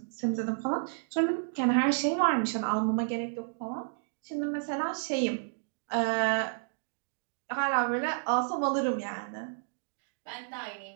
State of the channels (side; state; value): left; silent; digital silence